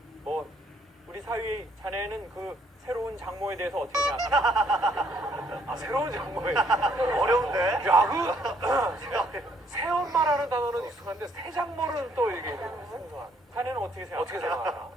뭐 우리 사위 자네는 그 새로운 장모에 대해서 어떻게 생각하나? 아, 새로운 장모에. 어려운데? 야, 새엄마라는 단어는 익숙한데 새장모는 또 이게 생소한. 자네는 어떻게 생각하나? 어떻게 생각하나?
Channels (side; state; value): both; normal; correlation 0.67